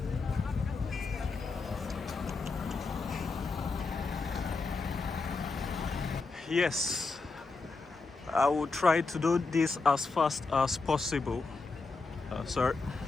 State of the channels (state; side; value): quieter; right; 4.0 dB